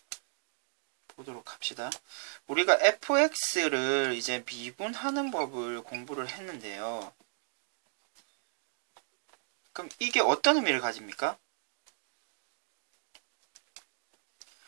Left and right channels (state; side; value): silent; left; digital silence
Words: 보도록 합시다. 우리가 fx를 이제 미분하는 법을 공부를 했는데요. 그럼 이게 어떤 의미를 가집니까?